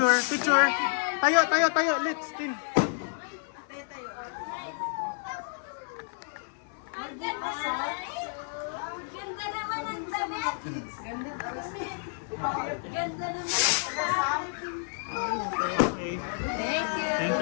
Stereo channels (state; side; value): silent; right; 57 dB below the other